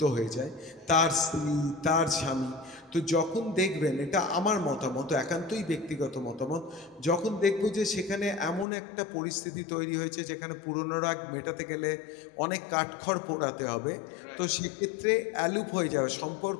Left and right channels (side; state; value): right; drops out; at 8.7 s